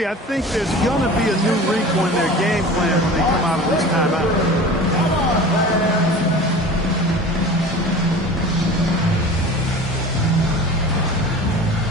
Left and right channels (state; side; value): normal; both; correlation 0.38